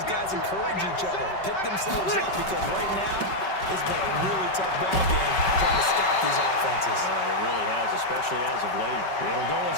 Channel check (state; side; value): late; right; 5.3 ms